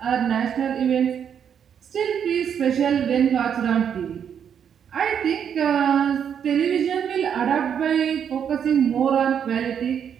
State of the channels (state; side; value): quieter; left; 8.1 dB